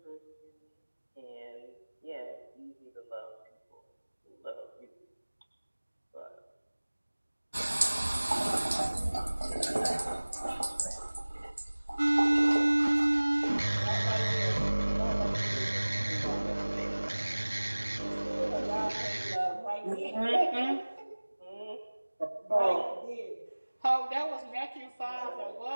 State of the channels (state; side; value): inverted; both; correlation -1.00